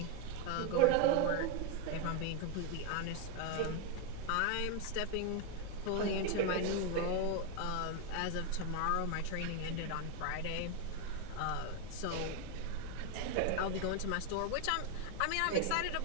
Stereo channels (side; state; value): both; different; correlation 0.01